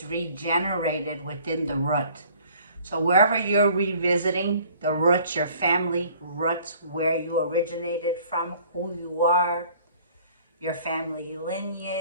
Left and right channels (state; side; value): inverted; both; correlation -0.54